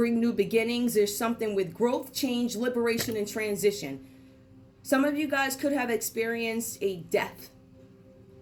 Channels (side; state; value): both; identical; correlation 1.00